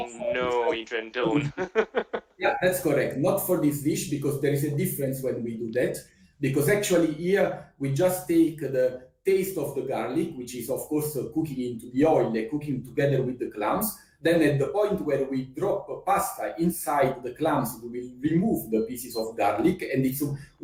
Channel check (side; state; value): both; identical; correlation 1.00